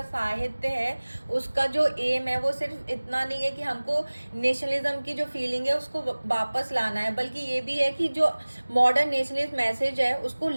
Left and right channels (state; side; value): inverted; both; correlation -1.00